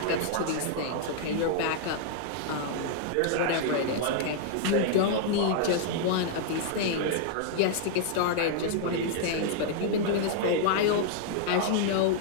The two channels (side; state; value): both; different; correlation -0.01